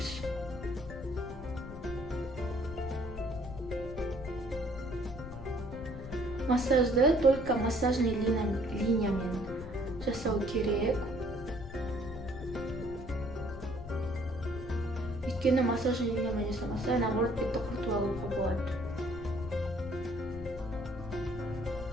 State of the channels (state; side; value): noise; left; rumble, 12 dB below the sound